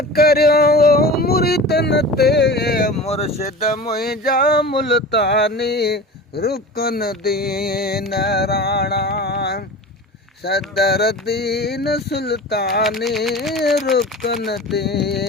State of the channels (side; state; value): both; normal; correlation 0.34